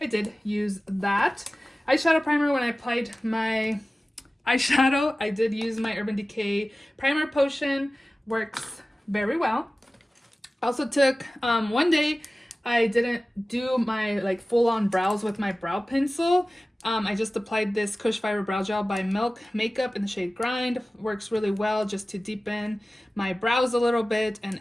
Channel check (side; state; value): both; normal; correlation 0.97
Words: did use that. Eyeshadow primer, when I applied my eyeshadow, I did use my Urban Decay Primer Potion. Works very well. Also took, one day, I didn't do my like full-on brows with my brow pencil. I just applied this Kush Fiber Brow Gel by Milk Makeup in the shade Grind. Works really well just to deepen my brows a little bit and